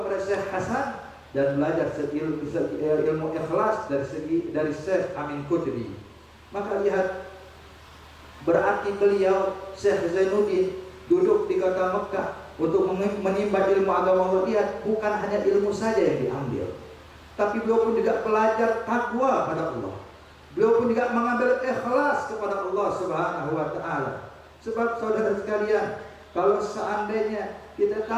kepada Syekh Hasan dan belajar ilmu ikhlas dari Syekh Amin Qutbi. Maka lihat, berarti beliau Syekh Zainuddin duduk di kota Mekah untuk menimba ilmu agama Allah. Lihat, bukan hanya ilmu saja yang diambil, tapi beliau pun juga belajar takwa pada Allah. Beliau pun juga mengambil ikhlas kepada Allah Subhanahu wa taala. Sebab saudara sekalian, kalau seandainya kita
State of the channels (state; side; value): identical; both; correlation 1.00